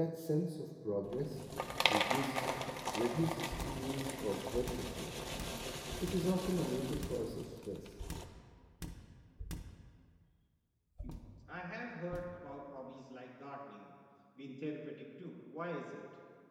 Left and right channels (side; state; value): both; identical; correlation 1.00